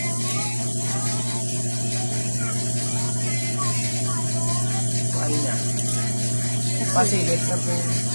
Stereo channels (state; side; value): inverted; both; correlation -1.00